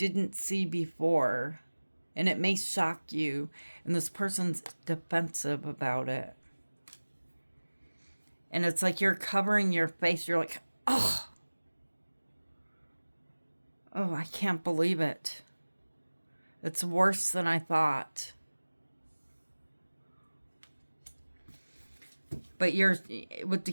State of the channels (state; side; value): inverted; both; correlation -1.00